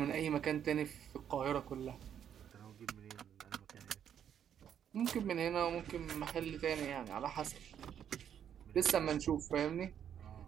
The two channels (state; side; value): quieter; left; 9.0 dB